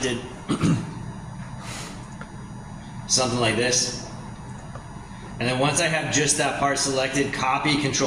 Something like this. And then once I have just that part selected, copy,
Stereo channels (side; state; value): both; identical; correlation 1.00